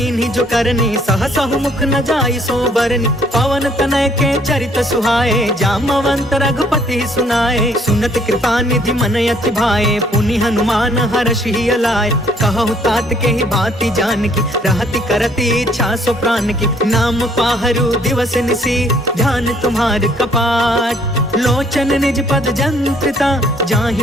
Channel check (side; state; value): both; normal; correlation 0.63